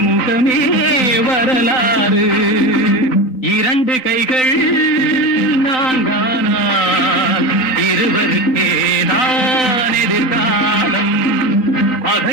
முகமே வரலாறு. இரண்டு கைகள் நான்கானால் இருவருக்கேதான் எதிர்காலம்.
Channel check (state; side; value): late; right; 3.9 ms